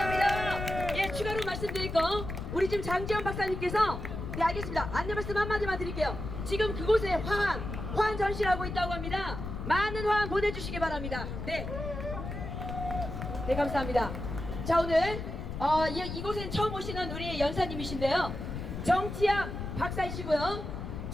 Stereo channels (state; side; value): noise; left; rumble, 6 dB below the sound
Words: 예, 추가로 말씀드릴 거, 우리 지금 장지현 박사님께서, 네, 알겠습니다. 안내 말씀 한마디만 드릴게요. 지금 그곳에 화환 전시를 하고 있다고 합니다. 많은 화환 보내주시기 바랍니다. 네. 네, 감사합니다. 자, 오늘 이곳엔 처음 오시는 우리 연사님이신데요. 정치학 박사이시고요.